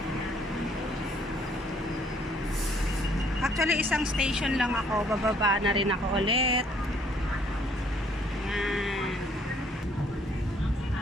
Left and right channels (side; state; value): both; normal; correlation 0.63